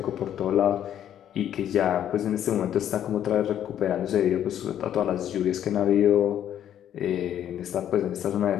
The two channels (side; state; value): right; quieter; 10.5 dB